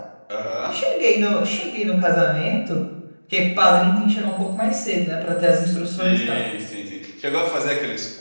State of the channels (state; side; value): inverted; both; correlation -1.00